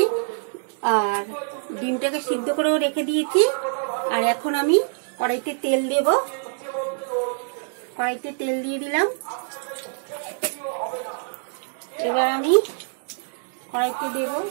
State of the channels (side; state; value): left; silent; digital silence